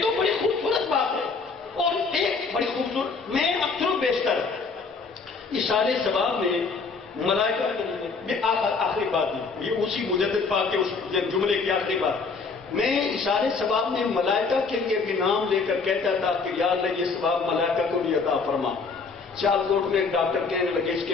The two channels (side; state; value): right; quieter; 4.7 dB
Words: تو بڑی خوبصورت بات ہے. اور ایک بڑی خوبصورت، میں اکثر و بیشتر اشارے ثواب میں ملائکہ یہ آخری بات ہے، یہ اسی مجدد پاک کے اس جملے کی آخری بات. میں اشارے ثواب میں ملائکہ کے لیے بھی نام لے کر کہتا تھا کہ یا اللہ یہ ثواب ملائکہ کو بھی عطا فرما. سیالکوٹ میں ایک ڈاکٹر کہنے لگے اس کے